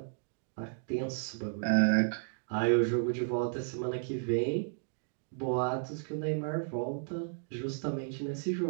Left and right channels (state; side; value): silent; left; digital silence